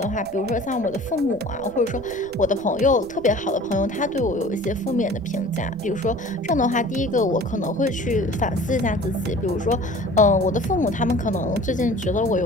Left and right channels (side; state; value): right; noise; rumble, 19 dB below the sound